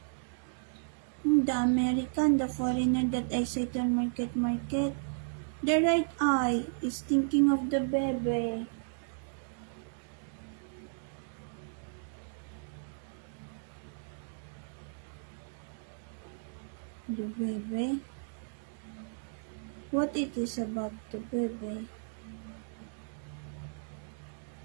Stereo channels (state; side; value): silent; left; digital silence